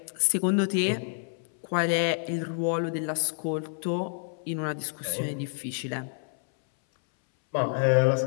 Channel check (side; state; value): right; silent; 59 dB below the other